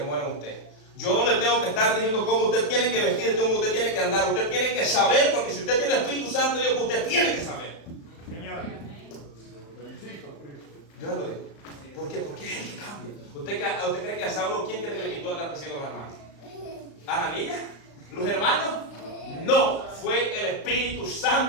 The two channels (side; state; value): right; late; 35 ms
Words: muere en usted. Yo no le tengo que estar diciendo cómo usted tiene que vestir, cómo usted tiene que andar. Usted tiene que saber, porque si usted tiene el Espíritu Santo de Dios, usted tiene que saber. Señor. Yo lo digo. ¿Por qué? Porque es el que cambia. ¿Usted cree que a Saulo, quién cree que le quitó andar persiguiendo a los hermanos? ¿Ananías? ¿Los hermanos? No, fue el Espíritu